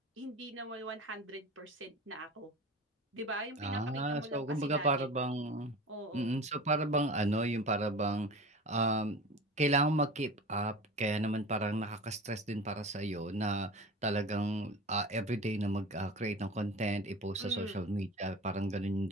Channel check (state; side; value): normal; both; correlation 0.34